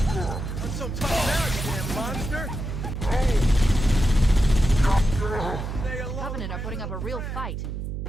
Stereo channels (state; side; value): noise; right; hum, 5 dB below the sound